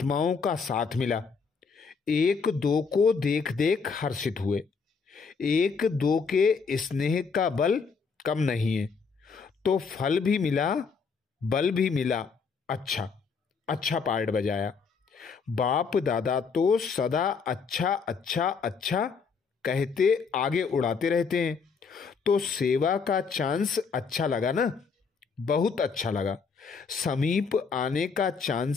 का साथ मिला। एक दो को देख देख हर्षित हुए। एक दो के स्नेह का बल कम नहीं है, तो फल भी मिला, बल भी मिला। अच्छा अच्छा पार्ट बजाया। बाप दादा तो सदा अच्छा अच्छा अच्छा कहते आगे उड़ाते रहते हैं। तो सेवा का चांस अच्छा लगा ना? बहुत अच्छा लगा। समीप आने का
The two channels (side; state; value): right; quieter; 5.4 dB